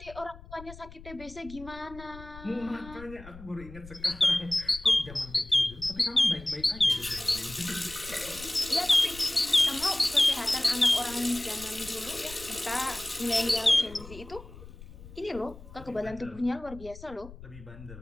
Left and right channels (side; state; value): left; noise; rumble, 17 dB below the sound